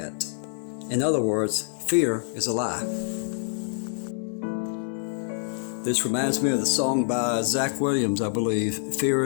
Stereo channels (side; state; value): right; silent; digital silence